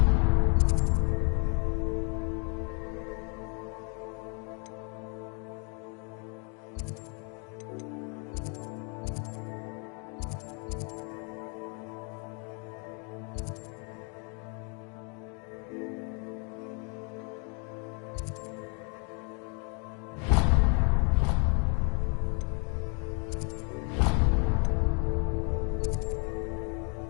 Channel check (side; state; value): right; quieter; 36.5 dB